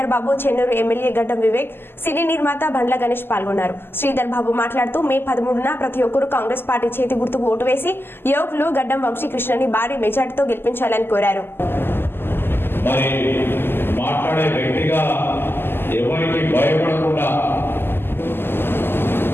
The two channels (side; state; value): right; late; 0.11 ms